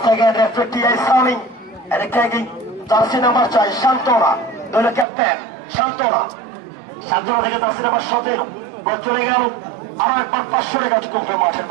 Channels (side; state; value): left; drops out; at 5.1 s